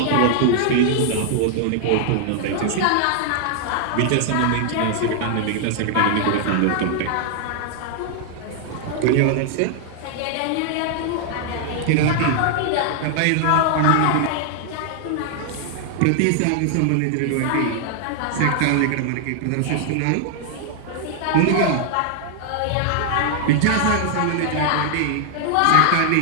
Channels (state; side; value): different; both; correlation 0.00